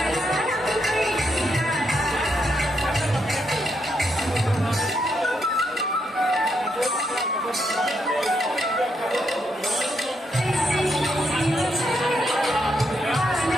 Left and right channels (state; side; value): normal; both; correlation 0.79